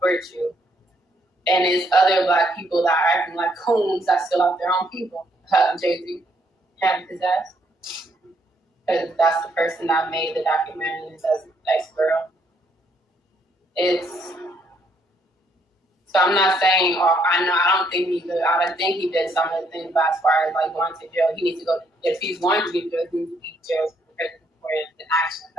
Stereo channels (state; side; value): normal; both; correlation 0.71